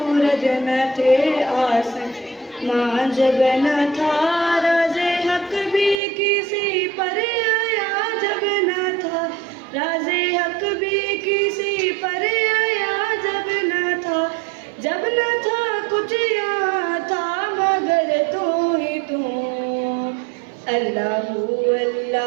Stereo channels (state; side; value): drops out; left; at 6.0 s